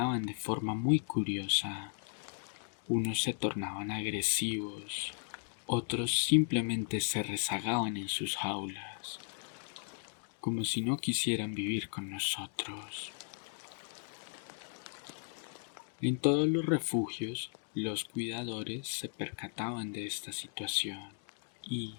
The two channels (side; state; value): right; silent; 54 dB below the other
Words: de forma muy curiosa. Unos se tornaban agresivos, otros simplemente se rezagaban en sus jaulas, como si no quisieran vivir con nosotros. En todos los refugios, los cuidadores se percataban de esta situación y,